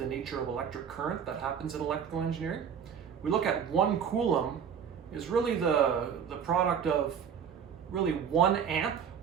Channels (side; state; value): left; quieter; 7.7 dB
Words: nature of electric current that happens in electrical engineering, we look at 1 Coulomb is really the product of really 1 amp